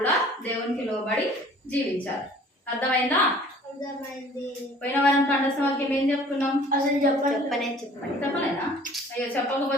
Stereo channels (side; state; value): both; normal; correlation 0.51